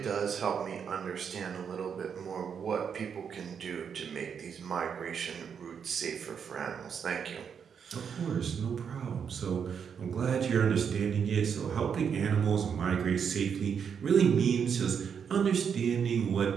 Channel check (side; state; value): left; quieter; 7.1 dB